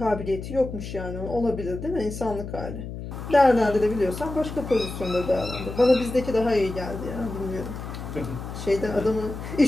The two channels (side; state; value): left; noise; hum, 9 dB below the sound